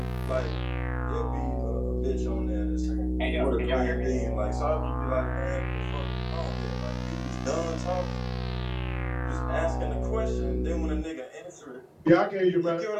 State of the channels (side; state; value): both; identical; correlation 1.00